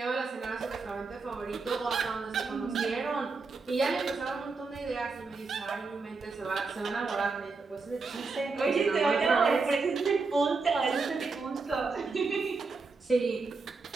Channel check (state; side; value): quieter; left; 4.2 dB